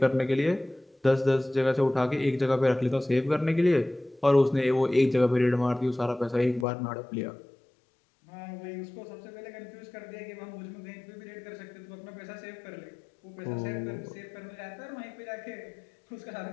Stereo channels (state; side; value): drops out; right; at 6.7 s